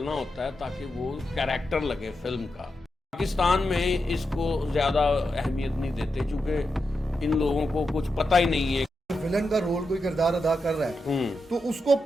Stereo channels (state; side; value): normal; both; correlation 0.87